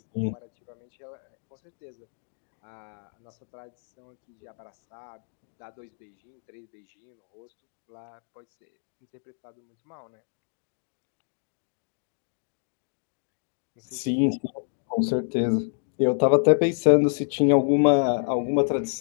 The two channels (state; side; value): silent; right; 59 dB below the other